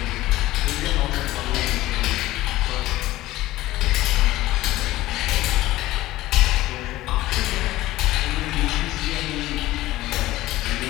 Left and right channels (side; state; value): right; quieter; 16.8 dB